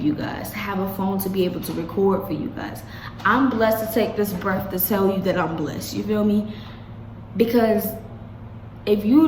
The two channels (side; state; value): both; identical; correlation 1.00